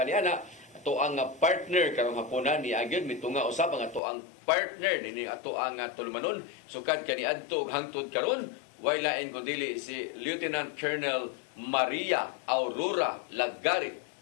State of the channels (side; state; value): right; drops out; at 4.0 s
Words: niana ato ang partner karong hapuna ni agad mitunga usab ang ato ang partner ni ato ang tulmanon sukad kaniadto hangtod karon way lain kundi si Lieutenant Colonel Maria Aurora Lagarit